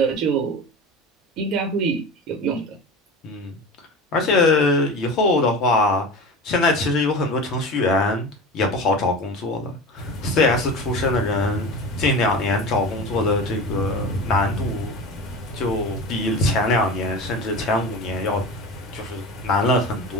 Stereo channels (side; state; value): both; normal; correlation 0.30